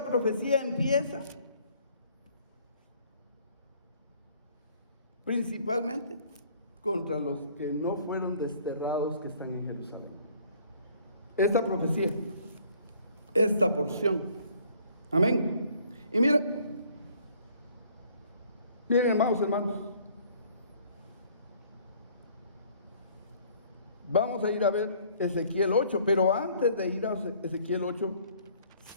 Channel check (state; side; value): inverted; both; correlation -0.58